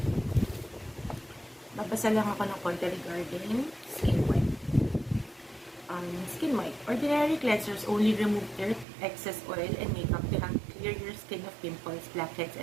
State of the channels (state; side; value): drops out; left; at 8.8 s